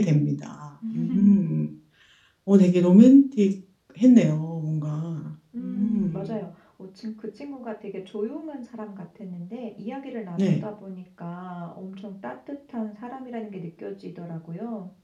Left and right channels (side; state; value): both; identical; correlation 1.00